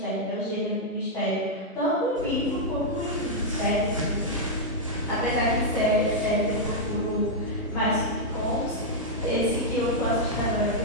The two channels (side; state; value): both; normal; correlation -0.04